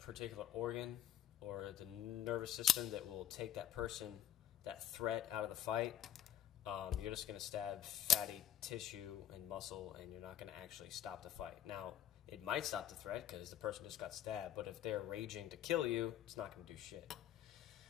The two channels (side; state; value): right; quieter; 10.9 dB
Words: organ or the nervous system that will take that person, that threat out of the fight, you're just going to stab fatty tissue and muscle, and you're not going to actually stop the fight. Now, it might stop the threat because the person just got stabbed, but if they're raging to kill you, it's not going to do shit.